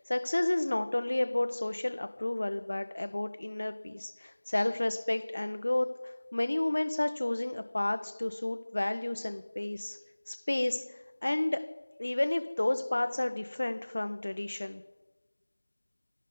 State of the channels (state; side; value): inverted; both; correlation -1.00